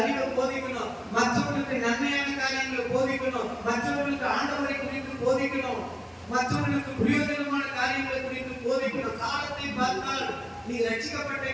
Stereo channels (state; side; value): identical; both; correlation 1.00